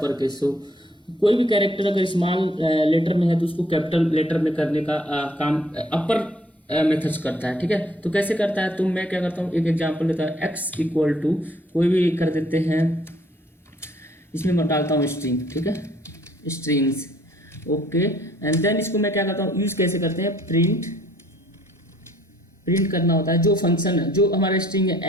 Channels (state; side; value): normal; both; correlation 0.62